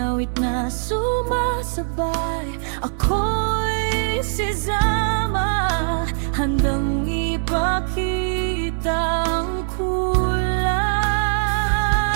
awit na sumasabay. Ako'y si Zama, handang ipakita ang kulay.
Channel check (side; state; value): left; silent; digital silence